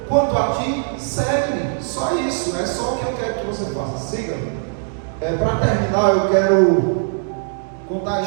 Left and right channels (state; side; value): silent; left; 66 dB below the other